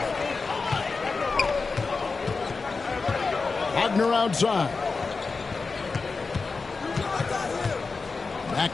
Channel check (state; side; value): quieter; right; 4.3 dB